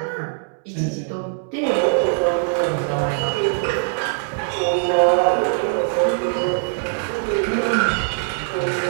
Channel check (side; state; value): left; silent; digital silence